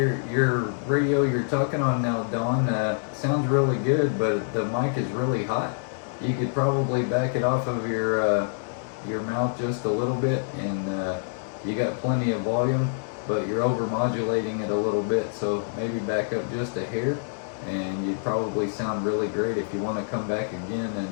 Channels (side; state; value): right; silent; digital silence